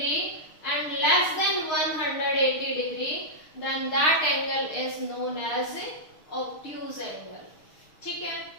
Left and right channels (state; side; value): late; right; 6.4 ms